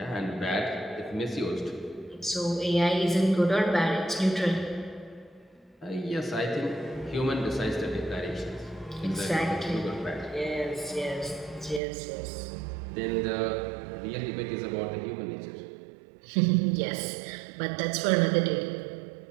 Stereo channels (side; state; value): left; drops out; at 11.8 s